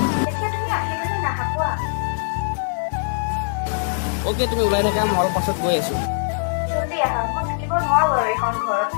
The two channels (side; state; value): right; silent; digital silence